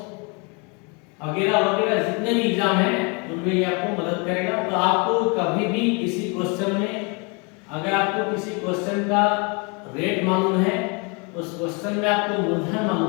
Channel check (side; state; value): right; quieter; 32.3 dB